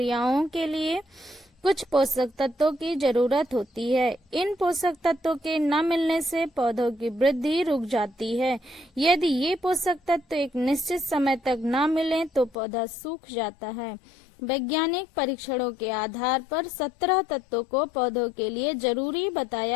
के लिए कुछ पोषक तत्वों की जरूरत होती है। इन पोषक तत्वों के न मिलने से पौधों की वृद्धि रुक जाती है। यदि ये पोषक तत्व एक निश्चित समय तक न मिले तो पौधा सूख जाता है। वैज्ञानिक परीक्षणों के आधार पर 17 तत्वों को पौधों के लिए जरूरी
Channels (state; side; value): drops out; right; at 12.6 s